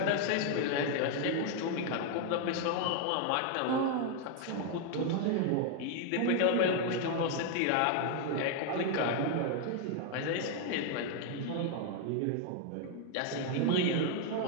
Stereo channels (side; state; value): both; different; correlation 0.00